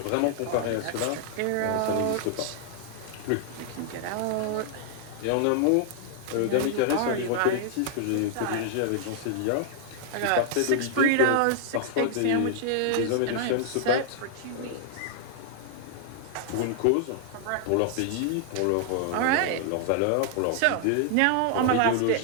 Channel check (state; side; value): different; both; correlation 0.00